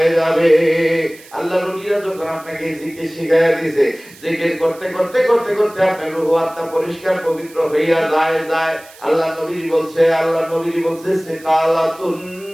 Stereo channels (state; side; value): noise; right; hiss, 22 dB below the sound